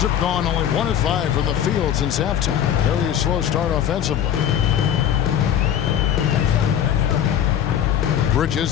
have gone only 1 of 5 from the field since halftime. Very slow start offensively.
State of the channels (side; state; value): right; quieter; 9.8 dB